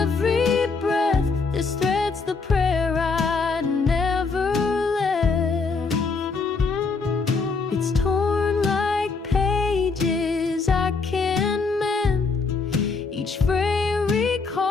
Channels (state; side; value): quieter; right; 4.4 dB